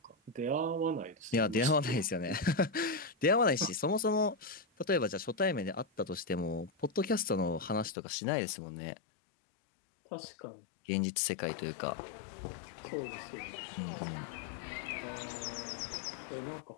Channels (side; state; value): right; drops out; at 8.0 s